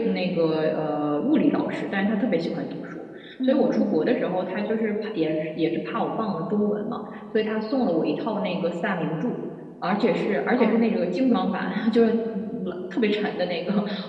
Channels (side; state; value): both; identical; correlation 1.00